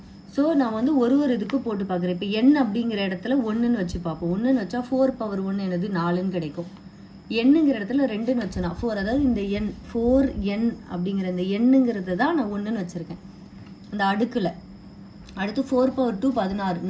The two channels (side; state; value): both; identical; correlation 1.00